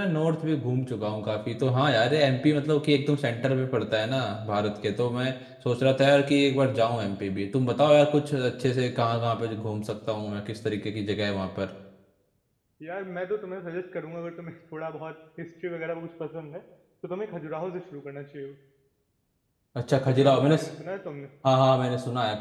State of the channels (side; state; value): both; identical; correlation 1.00